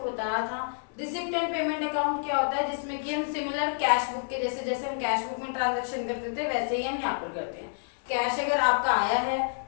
बताया था, रिसिप्ट एंड पेमेंट अकाउंट क्या होता है, जिसमें कि हम सिमिलर कैश बुक के जैसे जैसे हम कैश बुक में ट्रांजैक्शन करते थे वैसे ही हम यहाँ पर करते हैं। कैश अगर आपका आया है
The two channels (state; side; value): silent; right; digital silence